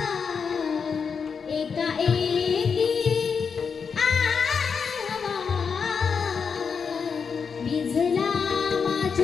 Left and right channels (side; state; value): right; quieter; 6.0 dB